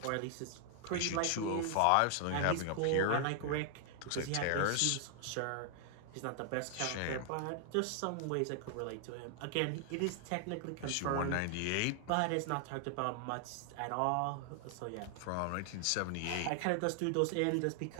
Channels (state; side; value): different; both; correlation 0.00